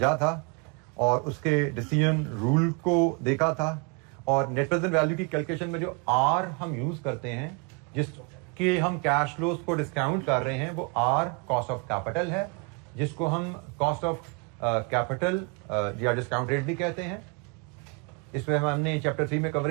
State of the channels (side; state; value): left; quieter; 32.4 dB